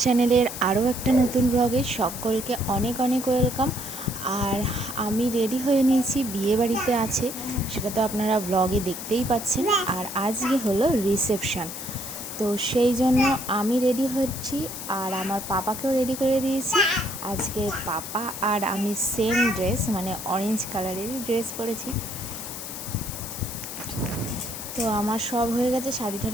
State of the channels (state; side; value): noise; left; hiss, 8 dB below the sound